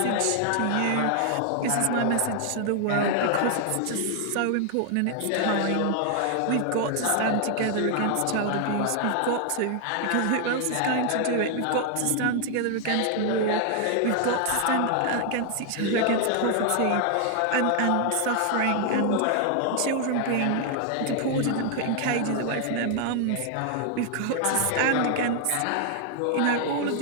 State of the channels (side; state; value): both; different; correlation 0.00